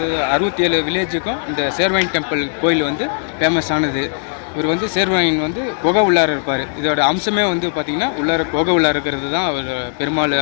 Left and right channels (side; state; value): right; silent; 68 dB below the other